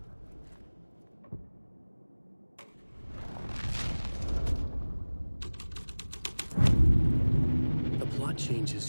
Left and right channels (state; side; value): inverted; both; correlation -1.00